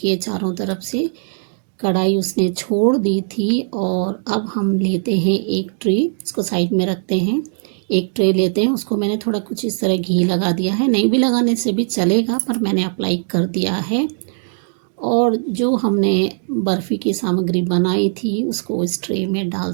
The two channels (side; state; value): left; silent; digital silence